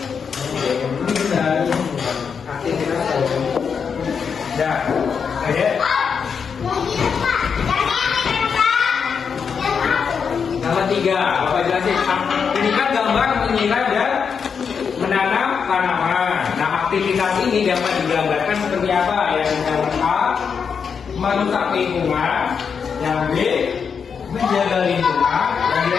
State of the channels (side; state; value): right; quieter; 6.4 dB